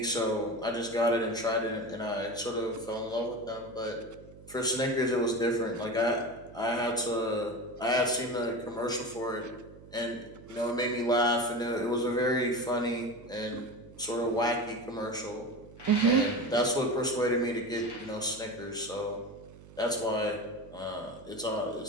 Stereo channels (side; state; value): right; noise; hum, 19 dB below the sound